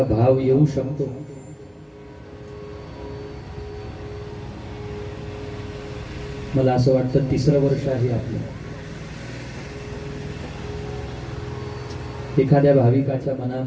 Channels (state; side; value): identical; both; correlation 1.00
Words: भाव येऊ शकतो। मला असं वाटतं 3रं वर्ष आहे आपलं। एखाद्या भाविकाच्या